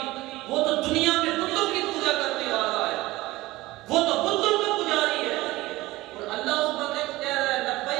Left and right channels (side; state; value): left; quieter; 18.7 dB